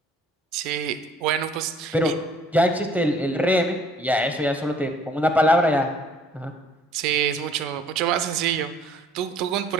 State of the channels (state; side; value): normal; both; correlation 0.57